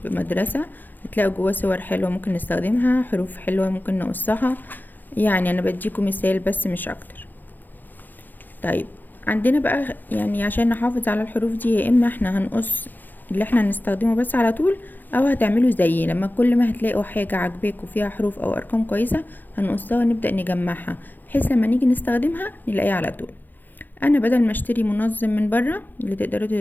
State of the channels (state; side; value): late; right; 0.087 ms